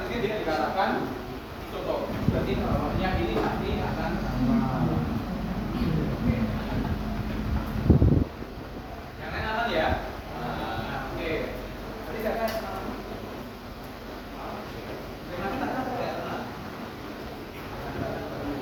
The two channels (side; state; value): both; identical; correlation 1.00